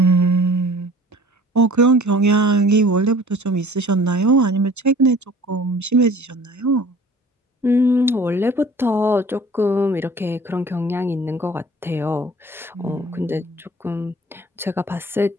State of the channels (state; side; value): normal; both; correlation 0.48